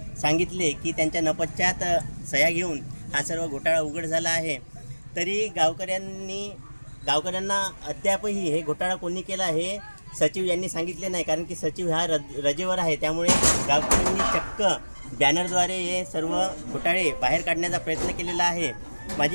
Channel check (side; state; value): both; inverted; correlation -1.00